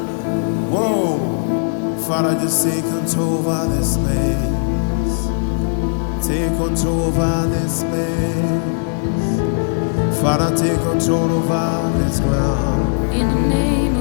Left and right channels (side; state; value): right; silent; digital silence